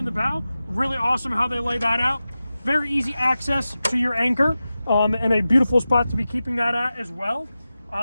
the bow. Really awesome how they lay that out. Very easy access to your anchor, and a beautiful spot to be keeping that at as well.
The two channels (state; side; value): inverted; both; correlation -0.94